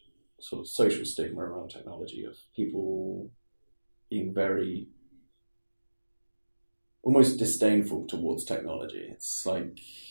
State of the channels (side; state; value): both; inverted; correlation -1.00